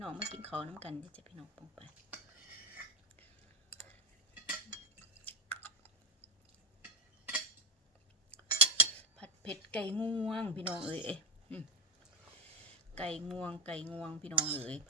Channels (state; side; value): normal; both; correlation 0.18